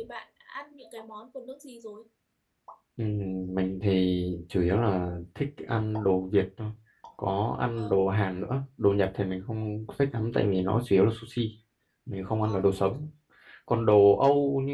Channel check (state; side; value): identical; both; correlation 1.00